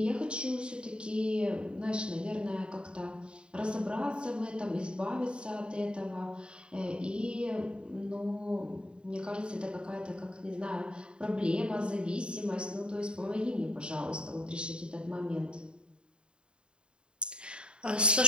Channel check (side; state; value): left; late; 0.051 ms